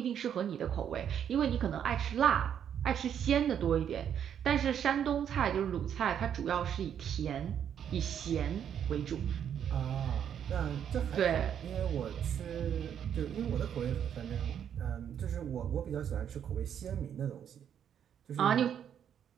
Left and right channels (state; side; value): quieter; left; 8.9 dB